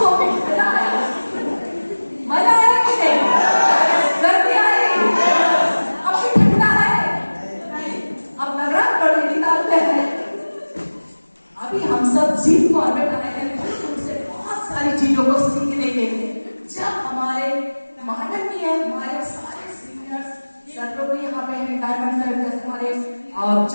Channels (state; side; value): inverted; both; correlation -1.00